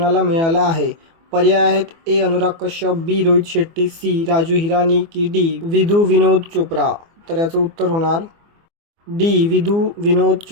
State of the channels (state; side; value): late; left; 24 ms